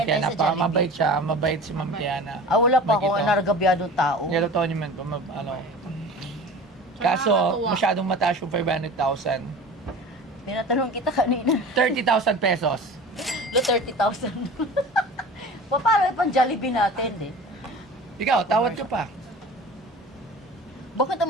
ay Tiana. sa Jollibee. Mabait siya. Mabait si Ma'am Tiana. wala pa ako, Makita. naragabyado tao. Niluto niyo man ko, Kaso, Nakakatuwa. masyadong mataas yung 500,000. Pinatanong kita kanina. 30,000 pesos. Lo 30,000. Paano pang Jollibee natin eh? Ikaw, tawad ka pa. Bakit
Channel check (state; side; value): normal; both; correlation 0.38